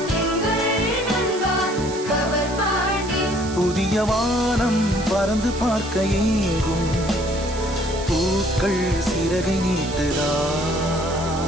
புதிய வானம் பறந்து பார்க்க ஏங்கும் பூக்கள் சிறகை நீட்டுதா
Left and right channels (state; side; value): noise; right; hiss, 13 dB below the sound